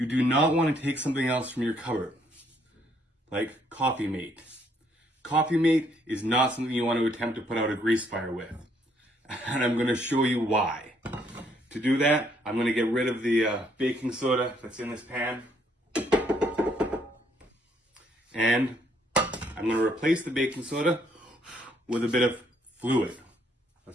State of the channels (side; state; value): both; normal; correlation 0.69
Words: do not want to take something else from your cupboard, like Coffee Mate. Coffee Mate is not something you want to attempt to put out a grease fire with. And I'm going to show you why. To do that, I'm going to get rid of the baking soda that's in this pan. And I'm going to replace the baking soda with a bit of fluid.